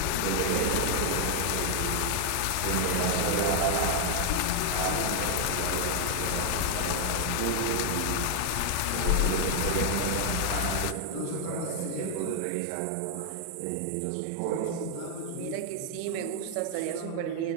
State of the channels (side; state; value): both; different; correlation 0.00